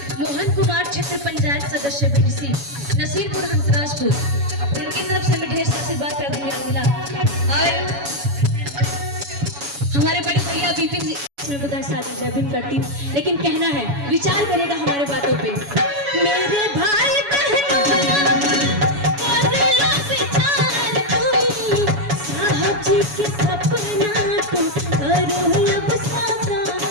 मोहन कुमार क्षेत्र पंचायत सदस्य बीडीसी नसीरपुर हंसराजपुर, उनकी तरफ से हमें ढेर सारा आशीर्वाद प्यार दुलार मिला। और हमारे बड़े भैया विपिन जी मैं बुधाई सागर जय भीम करती हूँ। लेकिन कहना है, विचार करेगा हमारे बातों पे। मेरे भाई बहनों साहब जी के सपना को करो अब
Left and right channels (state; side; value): late; left; 7.1 ms